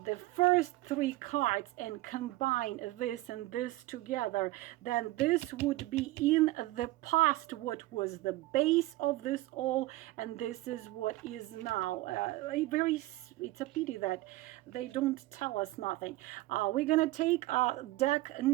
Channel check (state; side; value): quieter; left; 18.1 dB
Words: first three cards and combine this and this together, then this would be in the past what was the base of this all, and this is what is now. It's a pity that they don't tell us nothing. We're gonna take deck